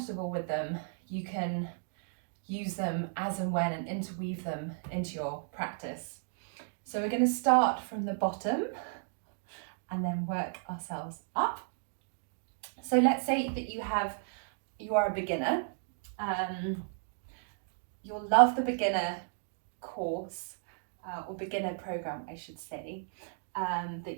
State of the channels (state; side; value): silent; left; digital silence